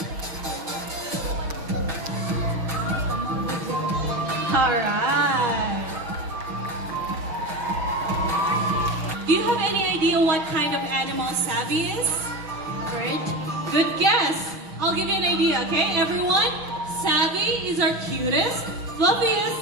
Alright. Do you have any idea what kind of animal Savvy is? Great. Good guess. I'll give you an idea, okay, everyone? Savvy is our cutest, fluffiest,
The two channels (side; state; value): left; late; 6.3 ms